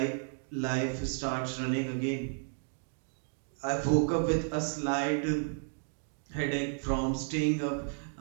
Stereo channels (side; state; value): left; silent; 56 dB below the other